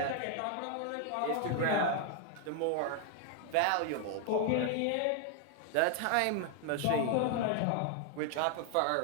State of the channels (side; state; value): both; different; correlation 0.00